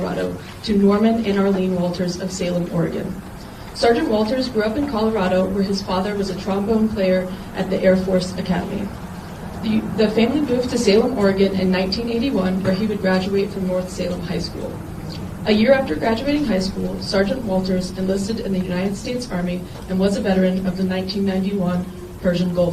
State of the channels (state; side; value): identical; both; correlation 1.00